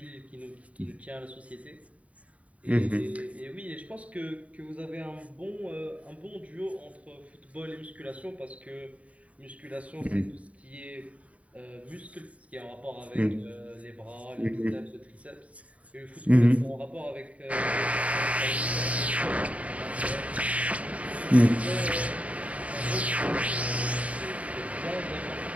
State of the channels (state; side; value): late; left; 0.067 ms